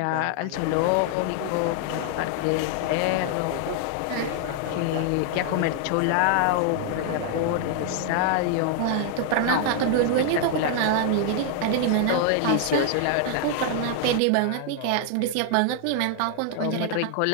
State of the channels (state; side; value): different; both; correlation 0.00